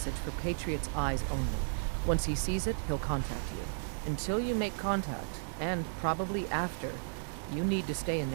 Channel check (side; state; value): left; silent; digital silence